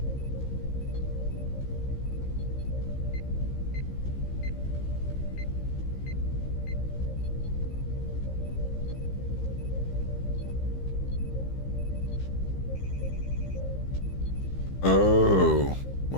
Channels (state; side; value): late; right; 15 ms